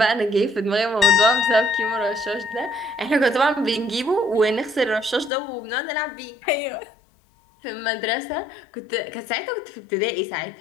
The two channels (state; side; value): drops out; right; at 5.3 s